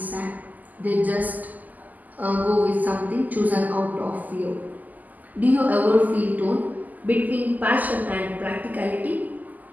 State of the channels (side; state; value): left; late; 0.081 ms